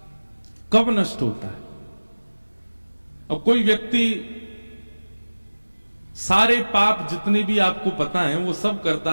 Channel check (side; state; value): both; inverted; correlation -1.00